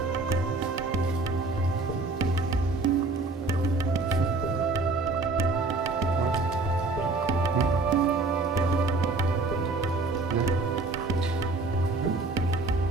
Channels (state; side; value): quieter; left; 3.4 dB